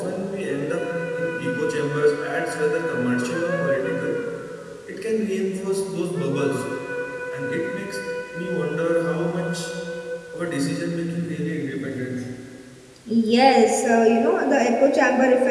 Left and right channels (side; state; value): both; identical; correlation 1.00